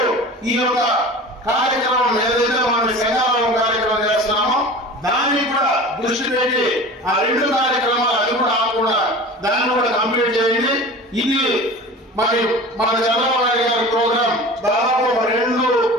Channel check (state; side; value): normal; both; correlation 0.37